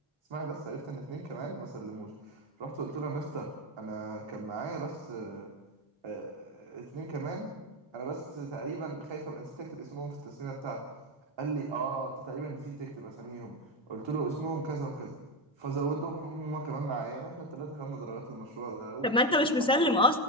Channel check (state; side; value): normal; both; correlation 0.12